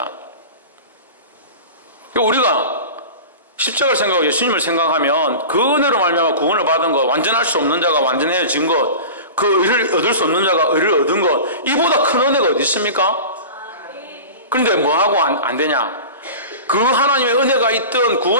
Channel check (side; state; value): both; inverted; correlation -0.33